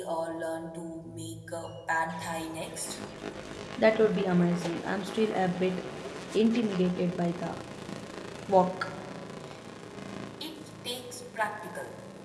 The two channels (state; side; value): identical; both; correlation 1.00